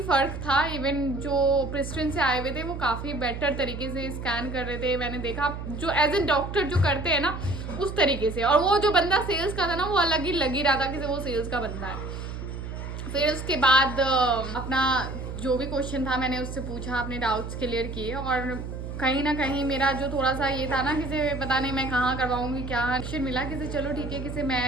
फ़र्क था। इवन जो प्रिस्ट्रिन से आए हुए थे वो काफ़ी बेटर तरीके से स्कैन कर रहे थे, मैंने देखा जो एज ए डॉक्टर जो करते हैं ना उस तरीके से, और वो जो बंदा सेल्स का था ना वो अलग ही लग ही रहा था कि वो सेल्स का बंदा है। फिर उसके बाद अपना जो भी क्वेश्चन था मैंने उससे पूछा, अपने डाउट्स क्लियर किए, और कहीं ना कहीं मेरा जो थोड़ा सा ये था ना कि पता नहीं मैं कहाँ करवाऊँगी, क्या एक्शन मिला कि चलो ठीक है कि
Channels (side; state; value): right; noise; hum, 7 dB below the sound